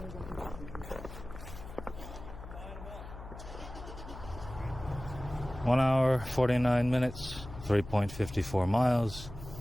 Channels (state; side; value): noise; left; hum, 12 dB below the sound